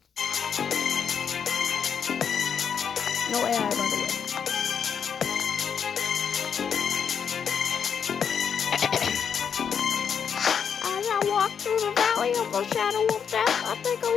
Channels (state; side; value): quieter; right; 7.3 dB